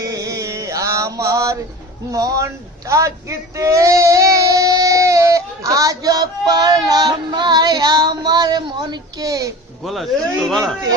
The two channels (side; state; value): both; normal; correlation 0.36